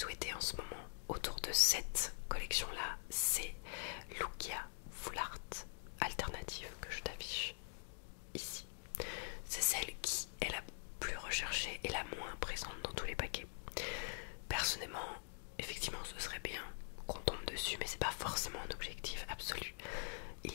en ce moment autour de cette collection là, c'est Lugia Full Art alternative que je t'affiche ici. C'est celle qui est la plus recherchée et la moins présente dans tous les paquets. Personnellement, effectivement ce serait bien qu'on tombe dessus, mais c'est pas forcément un objectif absolu. Il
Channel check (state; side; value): silent; right; digital silence